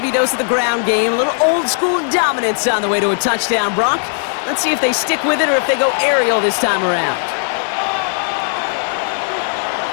dose of the ground game, a little old-school dominance on the way to a touchdown, Brock. Let's see if they stick with it or if they go aerial this time around.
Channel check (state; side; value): silent; right; digital silence